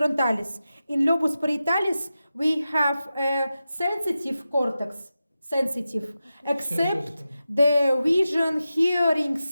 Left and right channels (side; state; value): both; inverted; correlation -0.92